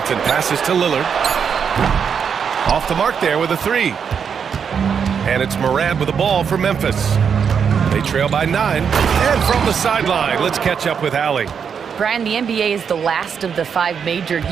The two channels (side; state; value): left; quieter; 7.0 dB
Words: passes to Lillard. Off the mark there with a 3. And it's Morant with the ball for Memphis. They trail by 9. And from the sideline, let's catch up with Allie. Brian, the NBA is the last of the 5 major